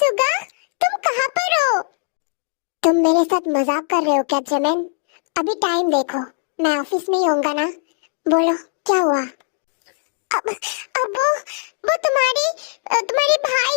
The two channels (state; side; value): silent; right; 59 dB below the other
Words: तुम कहाँ पर हो? तुम मेरे साथ मजाक कर रहे हो क्या जमेन? अभी टाइम देखो, मैं ऑफिस में ही होऊंगा ना। बोलो क्या हुआ? अब वो तुम्हारी भाई